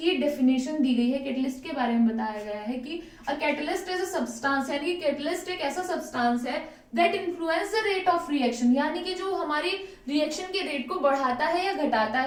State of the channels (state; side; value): identical; both; correlation 1.00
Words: डेफिनेशन दी गई है। कैटलिस्ट के बारे में बताया गया है कि अ कैटलिस्ट इज अ सब्सटेंस, यानी कि कैटलिस्ट एक ऐसा सब्सटेंस है that influence the rate of reaction, यानी कि जो हमारी रिएक्शन के रेट को बढ़ाता है या घटाता